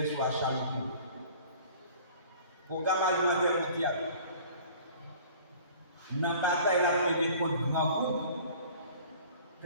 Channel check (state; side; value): inverted; both; correlation -0.48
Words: sur la Chaloupe. Programme alimentaire mondial. Dans la bataille la première contre grand groupe,